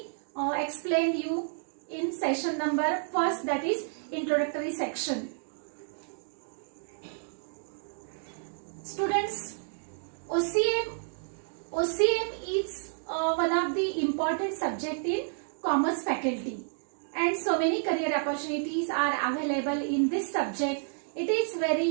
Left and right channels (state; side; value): silent; left; digital silence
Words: explained you in session number 1st, that is introductory section. Students, OCM is one of the important subject in commerce faculty, and so many career opportunities are available in this subject. It is